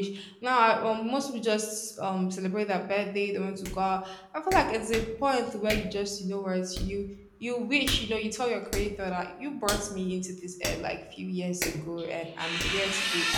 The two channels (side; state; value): both; identical; correlation 1.00